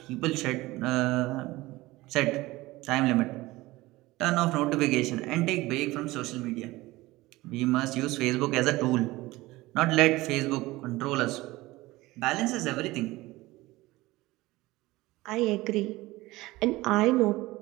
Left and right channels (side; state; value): left; quieter; 19.4 dB